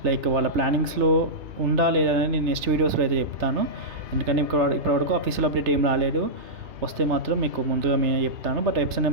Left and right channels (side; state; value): left; late; 3.3 ms